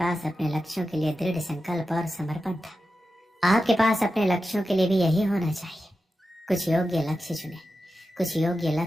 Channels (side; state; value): both; normal; correlation 0.91